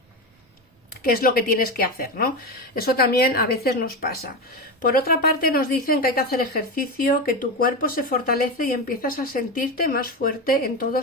qué es lo que tienes que hacer, ¿no? Eso también a veces nos pasa. Por otra parte, nos dicen que hay que hacer ejercicio, que tu cuerpo se fortalece y empiezas a sentirte más fuerte en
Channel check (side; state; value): both; normal; correlation 0.17